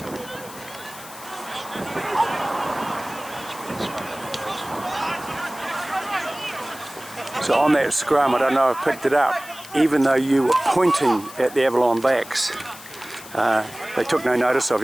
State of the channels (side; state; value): left; noise; hiss, 17 dB below the sound